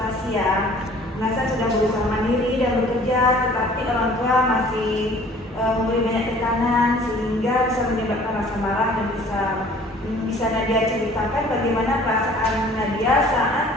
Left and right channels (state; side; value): normal; both; correlation 0.51